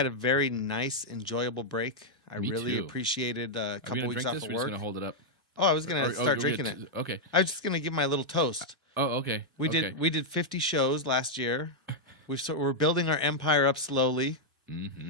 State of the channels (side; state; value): both; normal; correlation -0.03